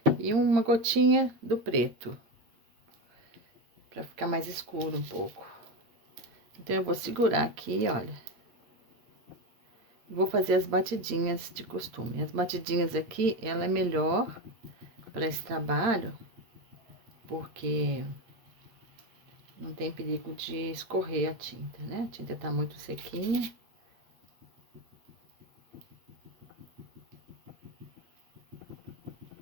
e uma gotinha do preto, para ficar mais escuro um pouco. Então, eu vou segurar aqui, olha. Vou fazer as batidinhas de costume. As batidinhas aqui, ela é melhor para esse trabalho, porque não tem perigo de escorrer a tinta, né? A tinta tá muito sequinha.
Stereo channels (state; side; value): late; left; 8.8 ms